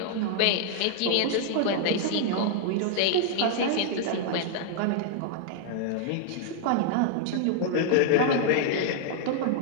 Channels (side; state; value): both; different; correlation 0.00